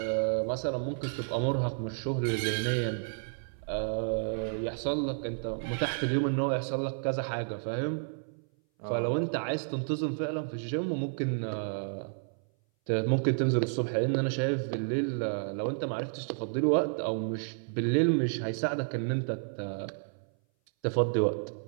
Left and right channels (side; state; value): left; silent; 57 dB below the other